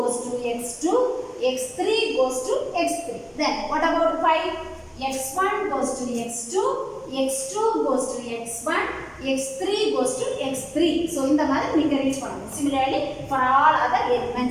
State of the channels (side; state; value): both; identical; correlation 1.00